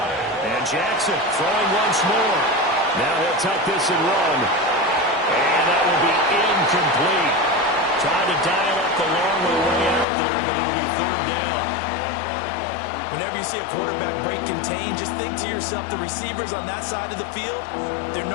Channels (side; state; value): right; drops out; at 10.1 s